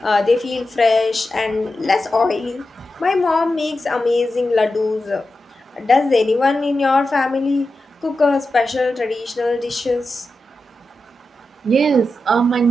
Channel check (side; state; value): both; normal; correlation 0.90